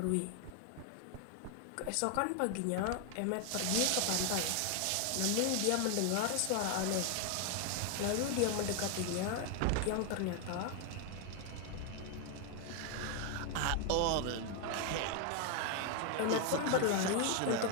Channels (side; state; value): both; different; correlation 0.01